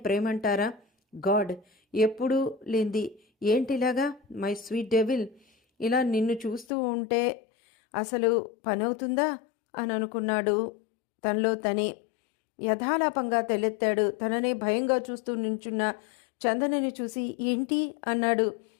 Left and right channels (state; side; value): drops out; right; at 6.7 s